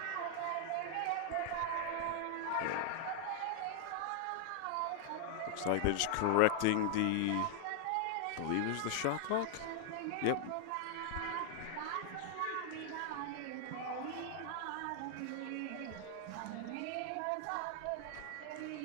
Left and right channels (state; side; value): different; both; correlation 0.00